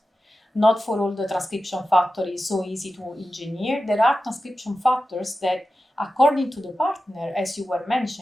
Not for all the transcription factors is so easy to engineer. There are transcription factors that, according to the partner, as you were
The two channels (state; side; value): normal; both; correlation 0.93